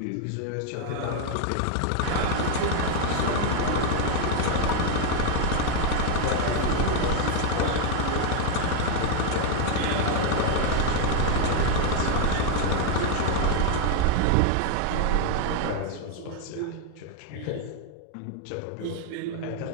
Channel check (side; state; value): both; different; correlation 0.01